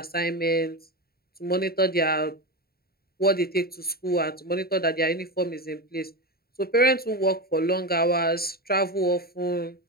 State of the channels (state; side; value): late; right; 0.45 ms